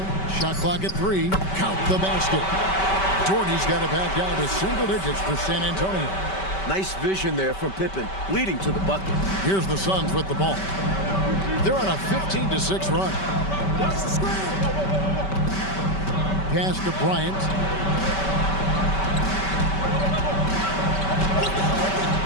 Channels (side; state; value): right; late; 5.2 ms